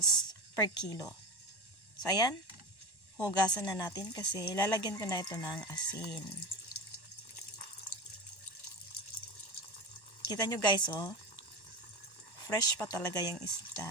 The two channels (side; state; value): right; late; 1.1 ms